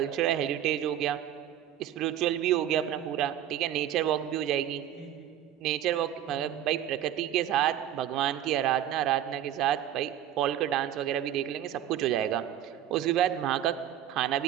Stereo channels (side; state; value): left; quieter; 11.1 dB